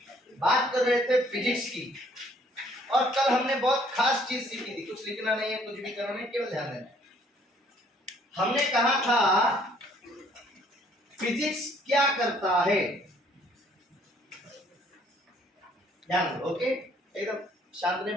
बात कर रहे थे फिजिक्स की और कल हमने बहुत खास चीज सीखी थी। कुछ लिखना नहीं है, कुछ भी करना नहीं, केवल ध्यान देना। हमने कहा था फिजिक्स क्या करता है। ध्यान दो, ओके। एकदम शांत में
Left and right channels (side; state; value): both; normal; correlation 0.62